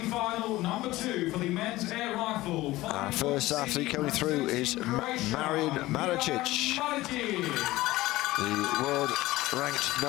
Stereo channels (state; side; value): quieter; right; 17.9 dB